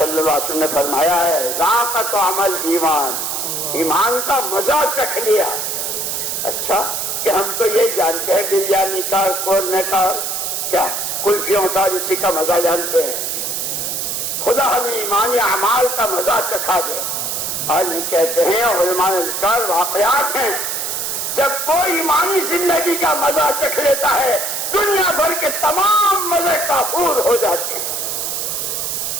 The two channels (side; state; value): right; noise; hiss, 2 dB below the sound